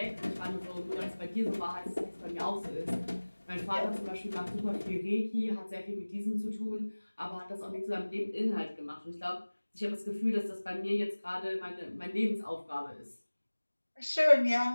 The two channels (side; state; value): both; inverted; correlation -1.00